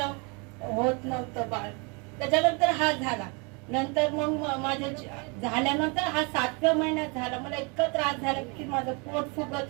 होत नव्हतं बाळ. त्याच्यानंतर हा झाला. नंतर मग माझ्या झाल्यानंतर हा 7व्या महिन्यात झाला. मला इतका त्रास झाला की माझं पोट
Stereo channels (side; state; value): left; quieter; 31.8 dB